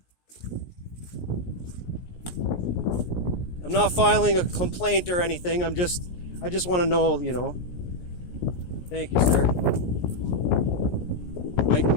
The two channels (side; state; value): right; late; 17 ms